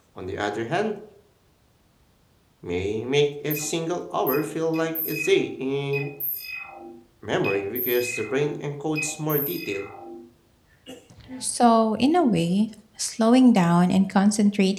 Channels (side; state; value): both; identical; correlation 1.00